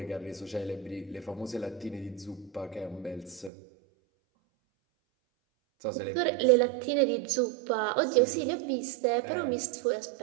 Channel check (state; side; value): drops out; left; at 3.5 s